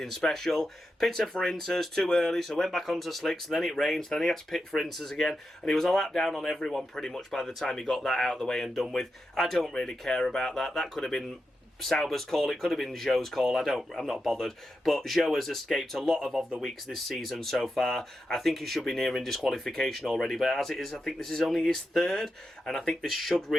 special. Pitted for inters too early, so went back onto slicks, and then it rained, then he had to pit for inters again, and he was a lap down on everyone pretty much by the time he got that out of the way and done with. I don't really care about that. That could have been Sauber's call, it could have been Zhou's call, I'm not bothered, but Zhou has escaped a lot of the weeks this season so far. I think he should be nearing disqualification already, but as it is, I think this is only his 3rd, and I think this should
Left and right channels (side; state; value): both; normal; correlation 0.88